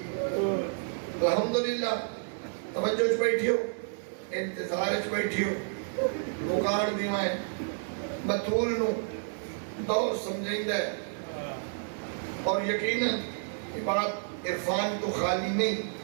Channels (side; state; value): left; silent; 58 dB below the other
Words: الحمدللہ توجہ چ بیٹھی ہو انتظار چ بیٹھی ہو مکان دیوائیں بطول نو دور سمجھیں دے اور یقیناً یہ بات عرفان تو خالی نہیں